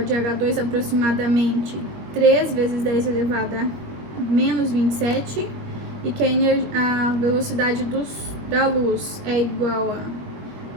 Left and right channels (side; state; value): left; late; 21 ms